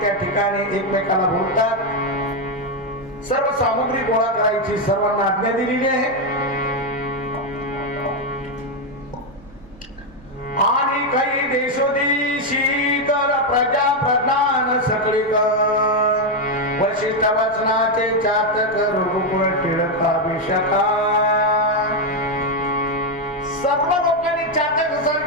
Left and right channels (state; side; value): noise; right; rumble, 24 dB below the sound